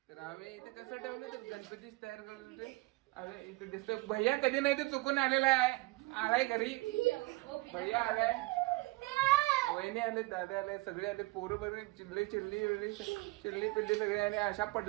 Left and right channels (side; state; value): left; quieter; 22.9 dB